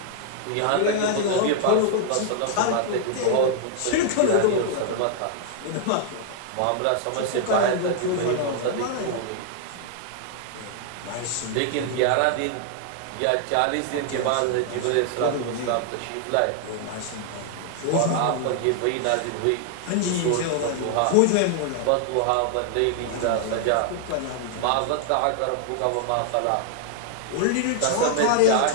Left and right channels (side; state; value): both; different; correlation 0.00